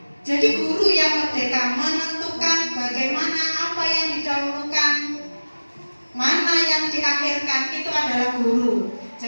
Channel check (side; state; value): both; inverted; correlation -1.00